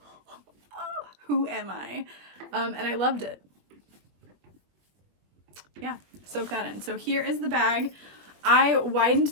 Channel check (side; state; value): left; late; 21 ms